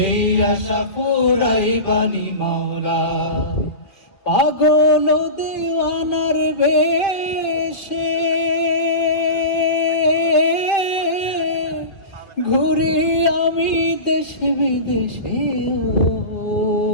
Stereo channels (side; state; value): right; late; 1.7 ms